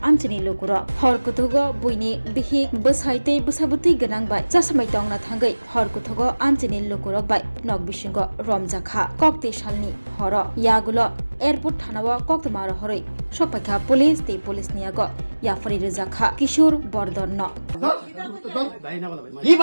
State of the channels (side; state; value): both; inverted; correlation -1.00